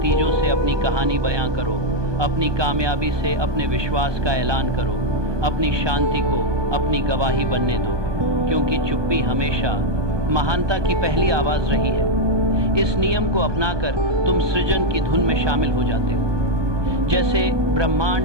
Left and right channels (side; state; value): left; late; 1.2 ms